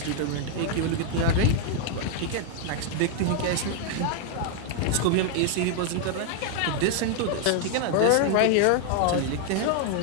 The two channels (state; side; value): different; both; correlation 0.00